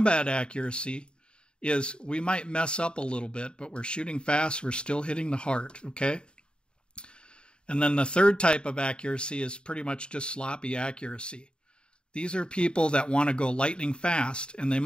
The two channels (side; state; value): right; late; 0.052 ms